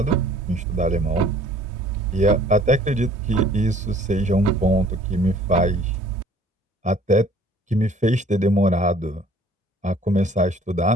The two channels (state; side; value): normal; both; correlation 0.55